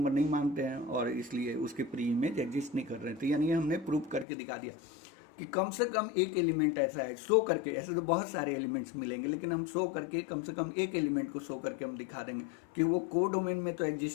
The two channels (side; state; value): right; drops out; at 4.2 s